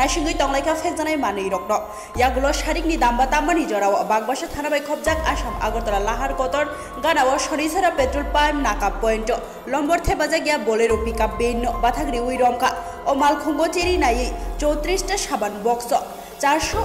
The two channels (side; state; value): both; identical; correlation 1.00